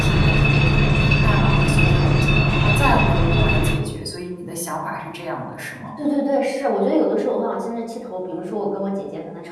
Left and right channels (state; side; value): identical; both; correlation 1.00